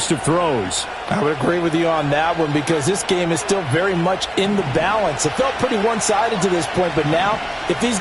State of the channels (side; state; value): both; identical; correlation 1.00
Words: of throws. I would agree with you on that one because this game is still very much in the balance. It felt pretty one-sided to this point, but now if these